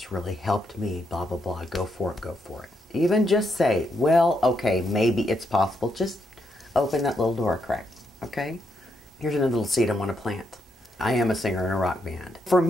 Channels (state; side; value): normal; both; correlation 0.79